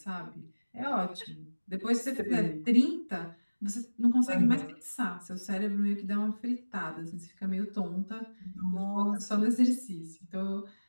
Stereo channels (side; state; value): both; inverted; correlation -1.00